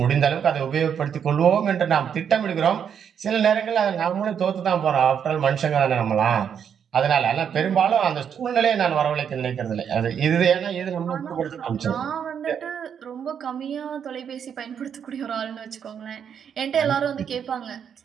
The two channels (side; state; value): left; quieter; 7.9 dB